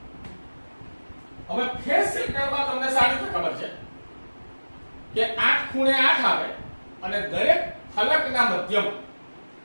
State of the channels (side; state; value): both; inverted; correlation -1.00